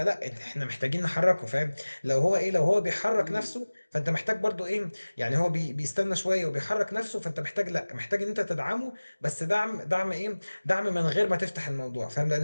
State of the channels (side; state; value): both; inverted; correlation -1.00